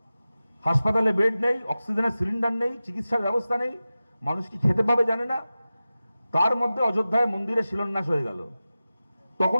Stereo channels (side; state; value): both; inverted; correlation -0.95